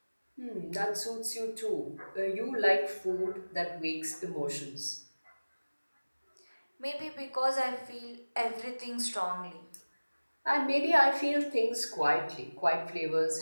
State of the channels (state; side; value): inverted; both; correlation -1.00